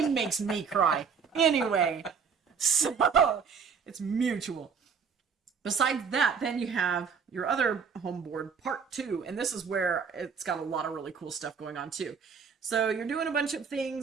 makes me cry. Anyway, so it's mutual. Besides that, then you have your other home board, part 2, and this is where it's got a lot of really cool stuff going on too. So you're doing a bunch of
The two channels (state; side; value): quieter; left; 6.2 dB